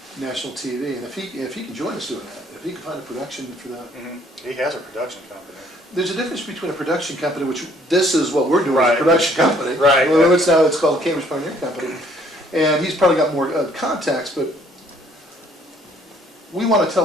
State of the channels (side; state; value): both; normal; correlation 0.61